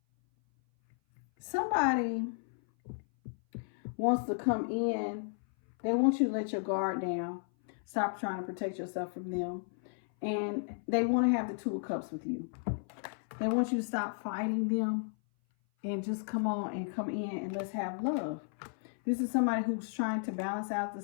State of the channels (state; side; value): silent; right; 55 dB below the other